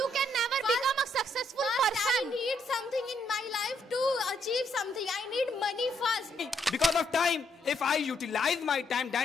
can never become a successful person. I need something in my life to achieve something. I need money first. Because of time, if I utilize my time,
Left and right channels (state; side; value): normal; both; correlation 0.74